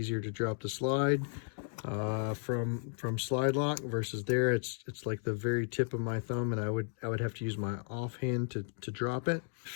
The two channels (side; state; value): right; silent; 55 dB below the other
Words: to drop the slide from slide lock versus there. It's like the very tip of my thumb, and I would have to use my offhand to drop it.